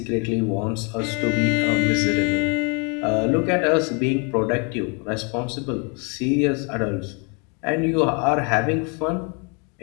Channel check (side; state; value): right; quieter; 34.7 dB